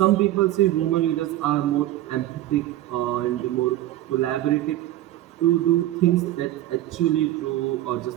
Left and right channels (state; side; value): quieter; left; 14.4 dB